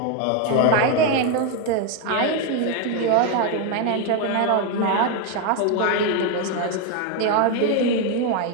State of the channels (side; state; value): both; different; correlation 0.02